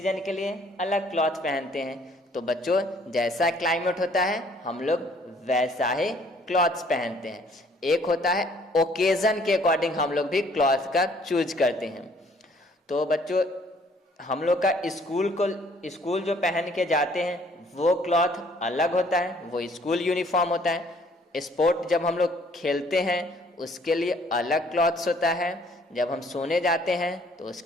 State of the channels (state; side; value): normal; both; correlation 0.60